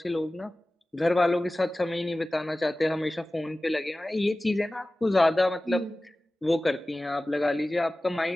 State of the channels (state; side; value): normal; both; correlation 0.97